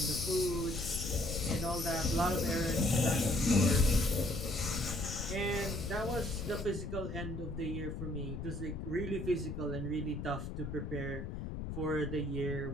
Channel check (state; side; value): noise; left; rumble, 6 dB below the sound